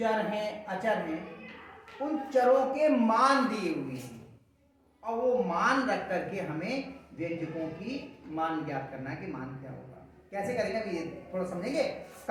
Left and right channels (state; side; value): identical; both; correlation 1.00